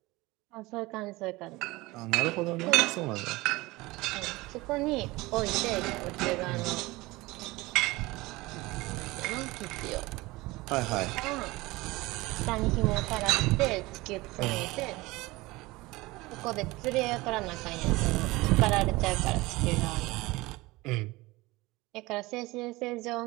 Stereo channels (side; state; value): left; quieter; 21.1 dB